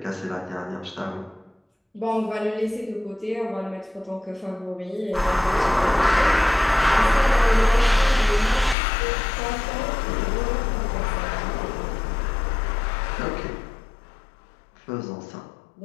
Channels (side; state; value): right; drops out; at 8.8 s